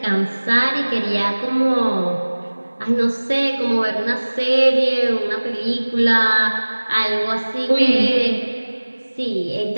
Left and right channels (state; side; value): inverted; both; correlation -1.00